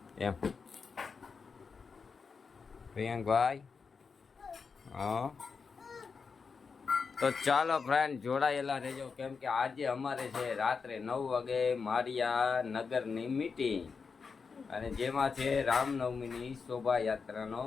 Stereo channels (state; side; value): quieter; right; 5.3 dB